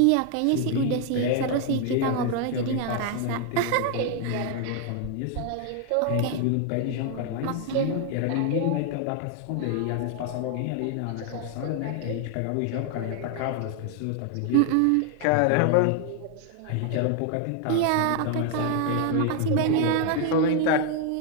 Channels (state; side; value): different; both; correlation 0.00